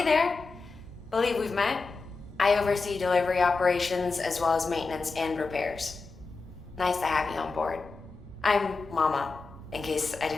there. Believe we've met. I oversee delivery operations as well as maintenance and repairs. Nice to have you on board. I'm Mama, in case I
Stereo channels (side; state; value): right; quieter; 4.1 dB